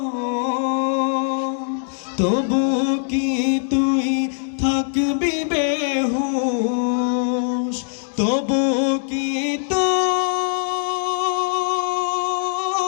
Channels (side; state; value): right; silent; 65 dB below the other